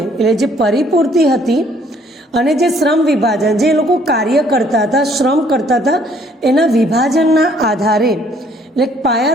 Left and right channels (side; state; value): both; normal; correlation 0.62